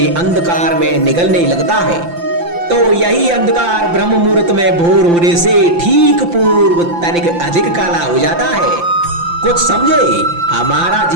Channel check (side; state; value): left; late; 5.8 ms